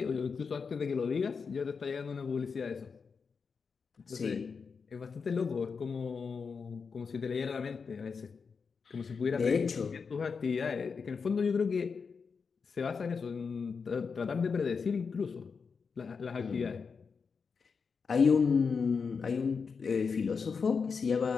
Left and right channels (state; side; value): quieter; right; 5.5 dB